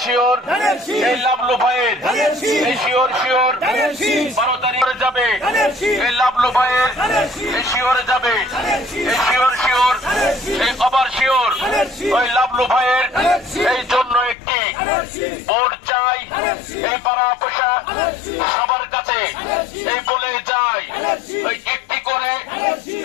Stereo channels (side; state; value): right; drops out; at 14.4 s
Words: শিওর এই লাবলু ভাইয়ের এই শিওর 12 তারিখে যাবে, এই লাবলু ভাইয়ের এই শিওর যাবে, এই শিওর এই আবার শিওর ওই লাবলু ভাইয়ের এই জন্য একটি ভোট চাই। এই পাড়া পয়সা সবার কাছে এই বলে যায়, ওই একটি করে